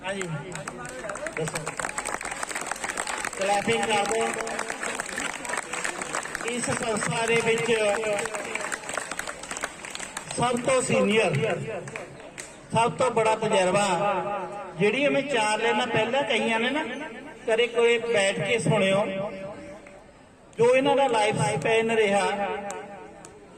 हाँ जी, दसो क्लैपिंग कर दो। इस संस्था दे विच सब तो सीनियर, सब तो बड़ा तजर्बा जिहड़ी मैं 4 लाइनां पहला कही ने ना, कदे कोई बैठ के सुनियो जो इन्हां दा लाइफ स्पैन रहा,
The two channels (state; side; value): identical; both; correlation 1.00